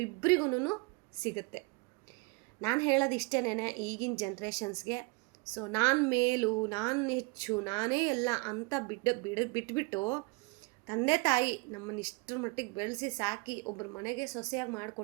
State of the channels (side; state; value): left; quieter; 27.4 dB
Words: ಸಿಗುತ್ತೆ. ನಾನು ಹೇಳೋದು ಇಷ್ಟೇನೆ ಈಗಿನ ಜನ್ರೇಷನ್ಸ್ಗೆ. ಸೊ ನಾನು ಮೇಲು, ನಾನು ಹೆಚ್ಚು, ನಾನೇ ಎಲ್ಲ ಅಂತ ಬಿಟ್ಬಿಟ್ಟು ತಂದೆ ತಾಯಿ ನಮ್ಮನ್ನು ಇಷ್ಟರ ಮಟ್ಟಿಗೆ ಬೆಳೆಸಿ ಸಾಕಿ ಒಬ್ಬರ ಮನೆಗೆ ಸೊಸೆಯಾಗಿ